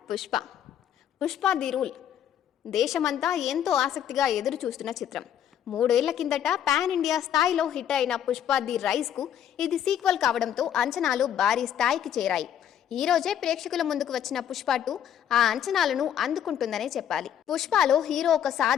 పుష్ప ది రూల్. దేశమంతా ఎంతో ఆసక్తిగా ఎదురు చూస్తున్న చిత్రం. 3 ఏళ్ల కిందట పాన్ ఇండియా స్థాయిలో హిట్ అయిన పుష్ప ది రైజ్కు ఇది సీక్వెల్ కావడంతో అంచనాలు భారీ స్థాయికి చేరాయి. ఈ రోజే ప్రేక్షకుల ముందుకు వచ్చిన పుష్ప 2 ఆ అంచనాలను అందుకుంటుందనే చెప్పాలి. పుష్పలో హీరో ఒక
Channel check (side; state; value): right; quieter; 9.7 dB